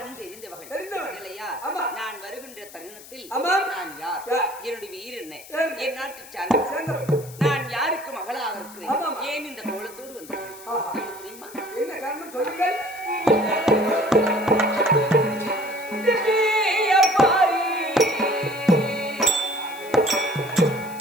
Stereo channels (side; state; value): left; noise; hiss, 18 dB below the sound